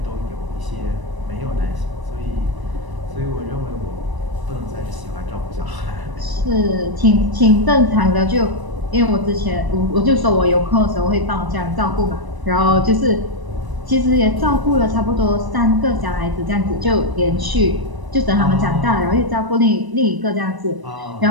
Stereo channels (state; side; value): late; left; 1.0 ms